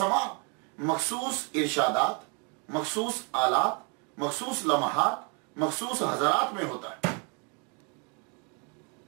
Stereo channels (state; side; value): quieter; left; 34.9 dB